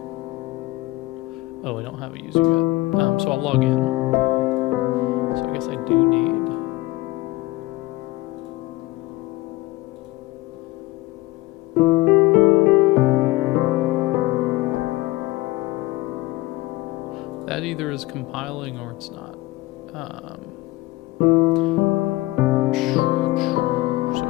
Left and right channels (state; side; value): quieter; right; 19.5 dB